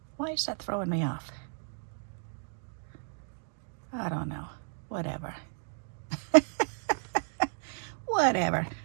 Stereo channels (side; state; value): left; silent; digital silence